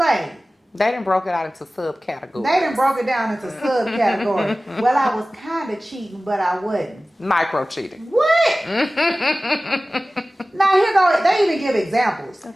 They done broke it out into subcategories. They done broke it down into subcategories. Well, I was kind of cheating, but I wasn't. Micro cheating. What? Now, here go. They even give examples.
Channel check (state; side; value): normal; both; correlation 0.97